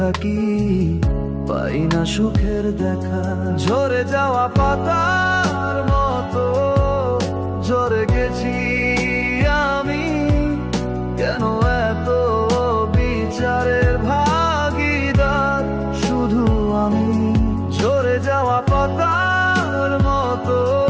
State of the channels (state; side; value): identical; both; correlation 1.00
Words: পাই না সুখের দেখা। ঝরে যাওয়া পাতার মতো ঝরে গেছি আমি, কেন এত বিচারের ভাগীদার শুধু আমি। ঝরে যাওয়া পাতার মতো